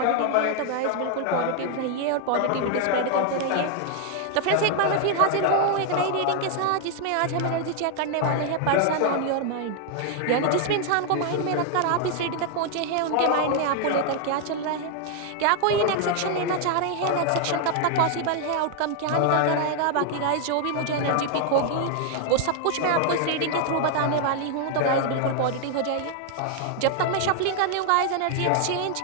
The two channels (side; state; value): both; different; correlation 0.00